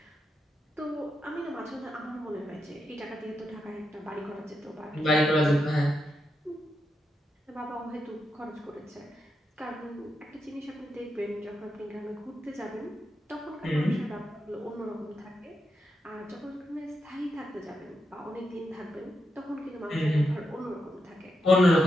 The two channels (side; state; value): both; normal; correlation 0.85